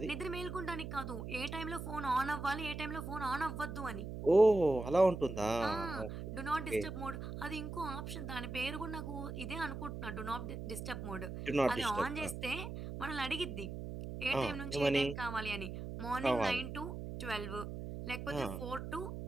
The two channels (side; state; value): right; noise; hum, 7 dB below the sound